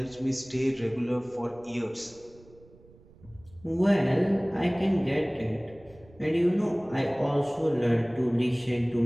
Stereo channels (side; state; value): right; noise; rumble, 25 dB below the sound